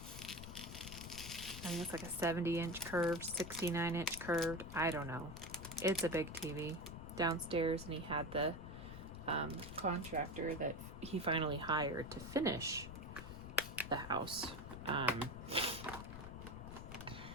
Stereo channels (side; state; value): left; noise; rumble, 10 dB below the sound